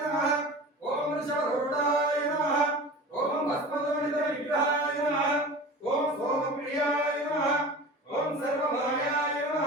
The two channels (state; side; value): normal; both; correlation 0.36